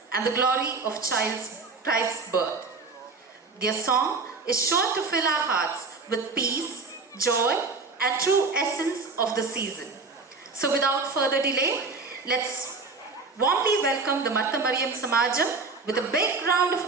and the glory of Christ's birth. Their song is sure to fill our hearts with peace, joy, and true essence of the season. So without further delay, let's warmly welcome the Martha Mariam Samajam with a big round of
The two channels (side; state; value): left; quieter; 4.1 dB